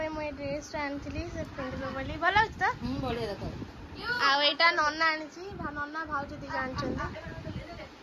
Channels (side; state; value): both; identical; correlation 1.00